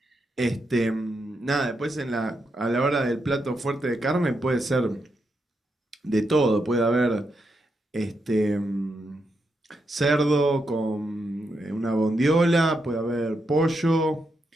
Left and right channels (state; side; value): normal; both; correlation 0.83